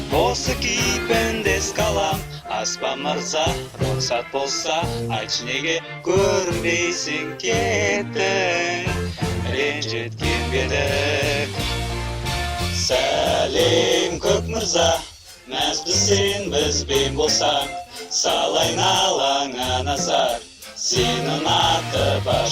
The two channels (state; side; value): identical; both; correlation 1.00